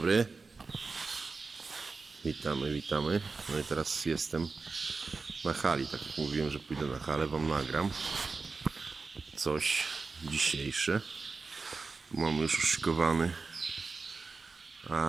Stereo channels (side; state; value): left; quieter; 4.3 dB